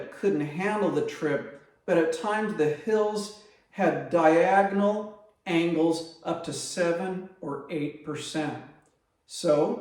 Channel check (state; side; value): identical; both; correlation 1.00